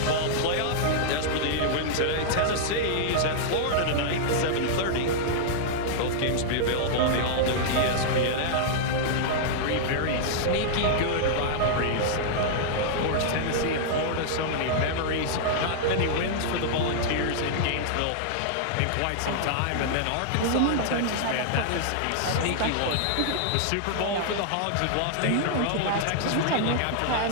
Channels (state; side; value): different; both; correlation -0.01